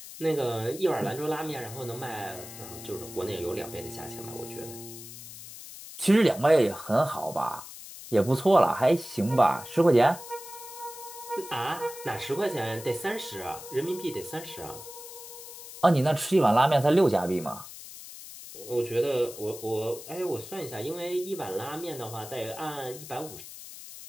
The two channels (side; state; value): left; noise; hiss, 14 dB below the sound